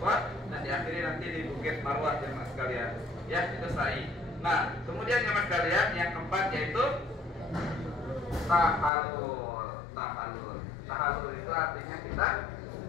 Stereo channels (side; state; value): right; drops out; at 8.9 s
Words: dan diakhiri nanti di bukit Marwah jemaah sekalian. Ya itu sa'i. Nah kemudian jemaah sekalian yang keempat yaitu tahalul itu artinya kita